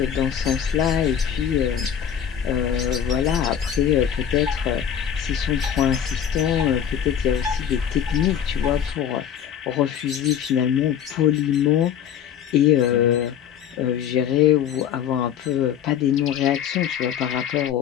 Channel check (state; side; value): quieter; right; 9.0 dB